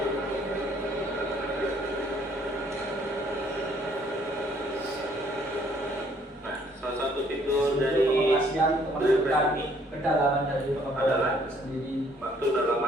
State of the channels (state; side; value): normal; both; correlation 0.63